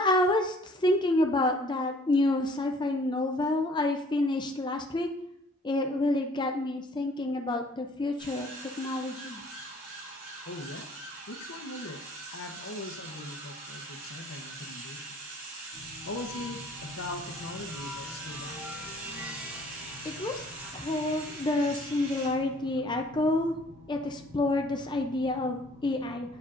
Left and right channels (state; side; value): normal; both; correlation 0.56